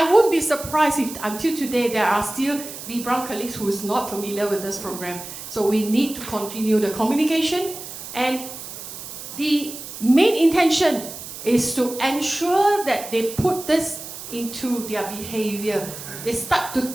won't be surprised if until today there are still B.Braun colleagues who is not familiar with this program. So we need to continue the communication, and the main intention is to ensure that they put this into their behavior. They start to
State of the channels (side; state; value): right; noise; hiss, 11 dB below the sound